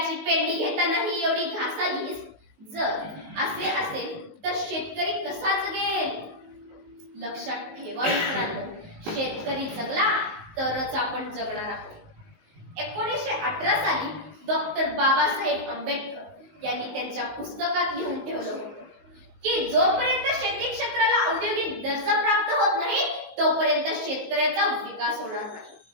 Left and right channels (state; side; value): late; left; 19 ms